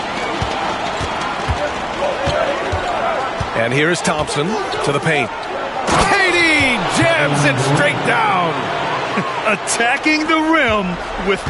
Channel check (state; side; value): identical; both; correlation 1.00